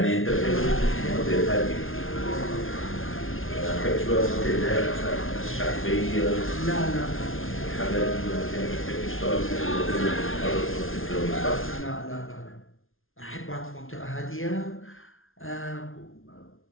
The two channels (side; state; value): right; late; 0.60 ms